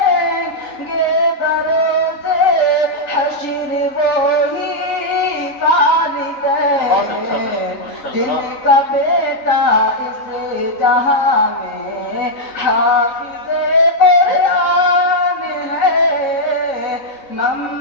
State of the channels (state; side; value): late; right; 3.9 ms